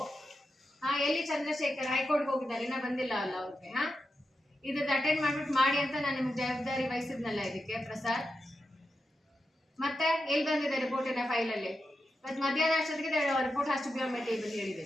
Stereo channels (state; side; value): normal; both; correlation 0.89